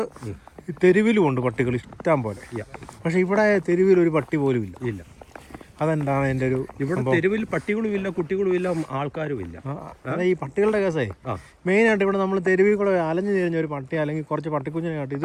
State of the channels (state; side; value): identical; both; correlation 1.00